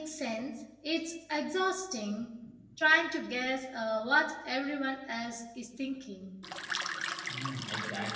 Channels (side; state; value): both; identical; correlation 1.00